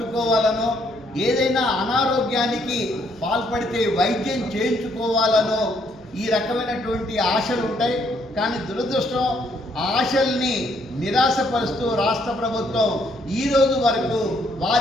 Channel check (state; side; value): normal; both; correlation 0.70